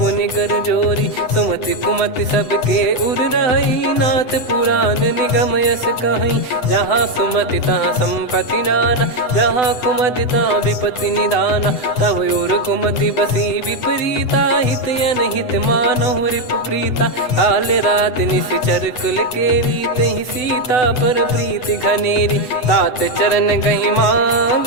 कर जोरी। सुमति कुमति सबके उर रही, नाथ पुराण निगम यस कहीं। जहाँ सुमति तहाँ संपत्ति नाना, जहाँ कुमति तहाँ विपत्ति निदाना। तब और कुमति बसी विपरीता, हित अनहित मानहु रिपु प्रीता। काल रात निशिचर कुल केरी, तेहि सीता पर प्रीति घनेरी। तात चरण गही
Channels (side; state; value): right; late; 7.9 ms